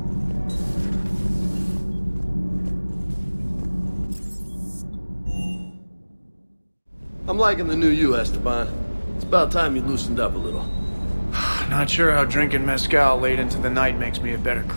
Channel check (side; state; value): both; inverted; correlation -1.00